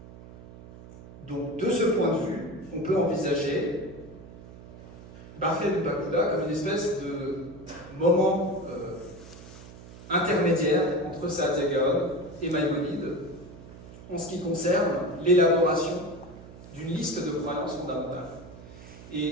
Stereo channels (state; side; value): noise; right; hum, 17 dB below the sound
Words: Donc, de ce point de vue, on peut envisager Bahia de Pakuda comme une espèce de moment intermédiaire entre Saadia Gaon et Maïmonide en ce qui concerne l'élaboration d'une liste de croyances fondamentales.